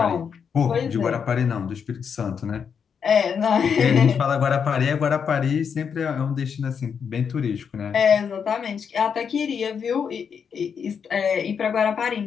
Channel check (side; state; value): right; quieter; 6.9 dB